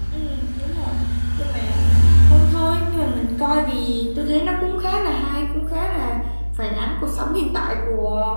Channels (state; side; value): inverted; both; correlation -1.00